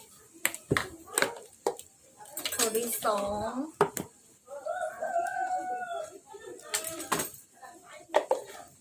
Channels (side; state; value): both; identical; correlation 1.00